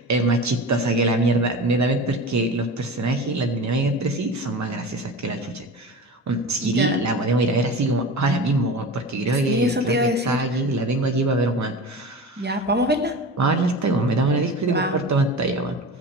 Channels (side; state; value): both; normal; correlation 0.32